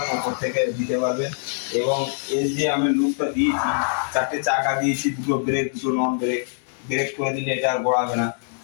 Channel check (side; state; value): right; silent; digital silence